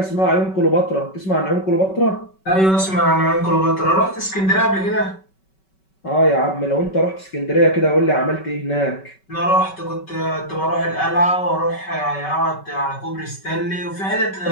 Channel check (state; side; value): late; right; 5.3 ms